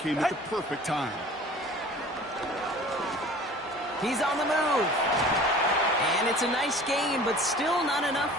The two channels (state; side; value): normal; both; correlation 0.45